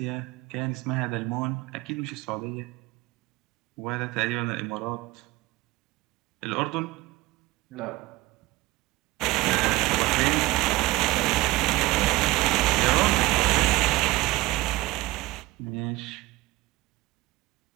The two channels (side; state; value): left; quieter; 19.2 dB